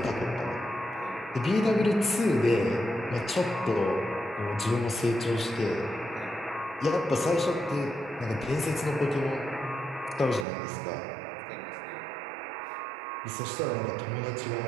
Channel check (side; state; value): left; drops out; at 10.5 s